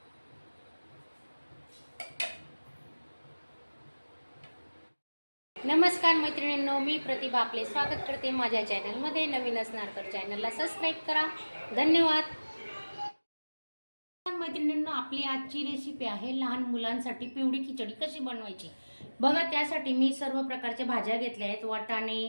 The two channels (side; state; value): both; inverted; correlation -1.00